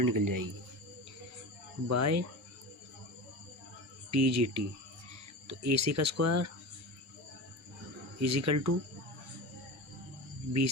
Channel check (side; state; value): both; normal; correlation 0.28